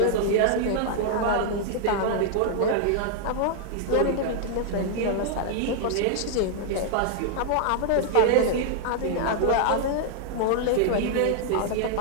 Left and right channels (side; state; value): both; different; correlation -0.01